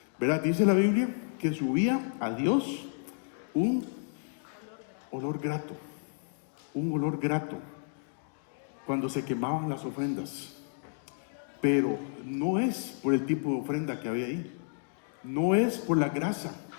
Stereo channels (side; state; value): right; silent; digital silence